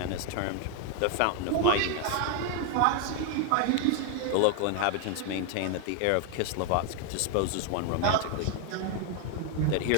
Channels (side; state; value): both; different; correlation 0.01